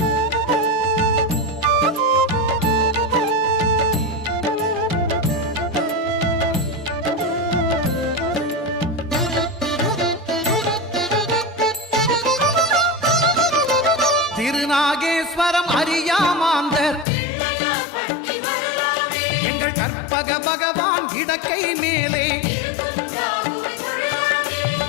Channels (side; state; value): right; drops out; at 17.1 s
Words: திருநாகேஸ்வரம் அறியாமாந்தர் எங்கள் கற்பக பகவான் இடக்கை மேலே